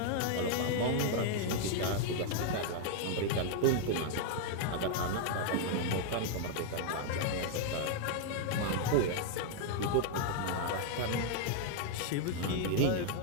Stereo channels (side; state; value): both; different; correlation 0.00